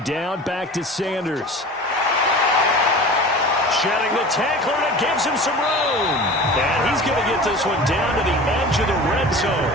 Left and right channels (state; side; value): normal; both; correlation 0.37